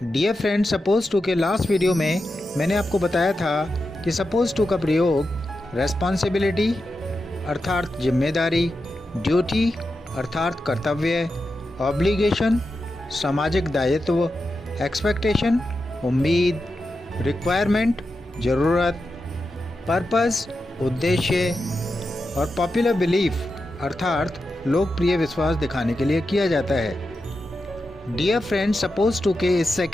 Dear friends, suppose to के लास्ट वीडियो में मैंने आपको बताया था कि suppose to का प्रयोग responsibility अर्थात जिम्मेदारी, ड्यूटी अर्थात कर्तव्य, ऑब्लिगेशन सामाजिक दायित्व, एक्सपेक्टेशन उम्मीद, रिक्वायरमेंट ज़रूरत, पर्पस उद्देश्य और पॉपुलर बिलीफ अर्थात लोकप्रिय विश्वास दिखाने के लिए किया जाता है। डियर फ्रेंड्स, सपोज टू के इस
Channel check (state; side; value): normal; both; correlation 0.89